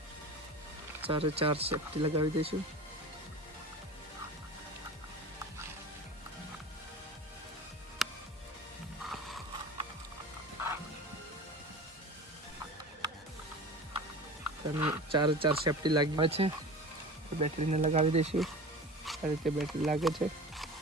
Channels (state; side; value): normal; both; correlation 0.35